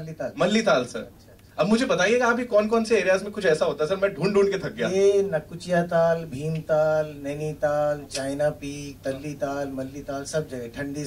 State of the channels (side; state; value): both; identical; correlation 1.00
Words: मल्लीताल सर. अब मुझे बताइएगा अभी कौन कौन से एरियाज में कुछ ऐसा होता है सर, मैं ढूंढ के थक गया. ये नकुचिया ताल, भीमताल, नैनीताल, चाइना पीक, तल्लीताल, मल्लीताल, सब जगह. Thandi